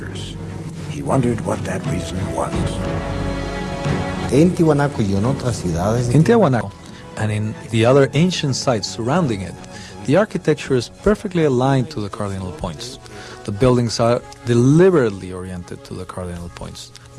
He wondered what that reason was. In Tiahuanaco and in the other ancient sites surrounding it, the architecture is perfectly aligned to the cardinal points. The buildings are deliberately oriented to the cardinal points.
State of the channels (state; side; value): identical; both; correlation 1.00